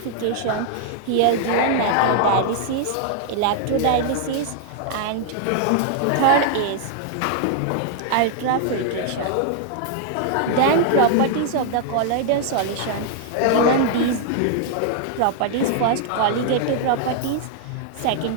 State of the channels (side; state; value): both; different; correlation 0.00